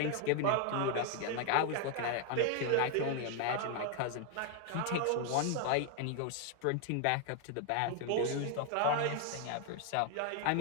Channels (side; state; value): both; different; correlation 0.01